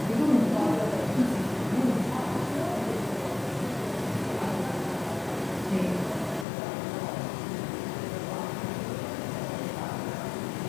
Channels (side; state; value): right; drops out; at 6.5 s